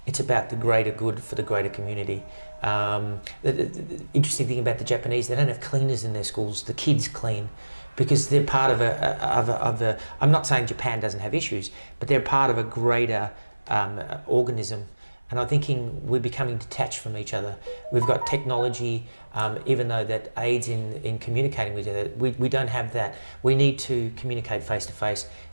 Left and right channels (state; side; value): inverted; both; correlation -1.00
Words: it's about the greater good for the greater community. The interesting thing about the Japanese, they don't have cleaners in their schools. The kids clean, because they're part of a I'm not saying Japan doesn't have issues, but they're part of a greater organism. And I'm thinking we're becoming detached from each other. We've got technology, even though that aids in communicating with each other, we don't have that. We need to communicate face to face,